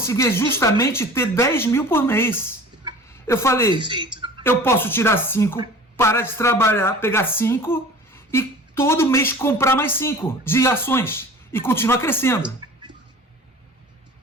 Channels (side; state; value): both; normal; correlation 0.42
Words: justamente ter 10 mil por mês. Eu falei, eu posso tirar 5, parar de trabalhar, pegar 5 e todo mês comprar mais 5 de ações e continuar crescendo.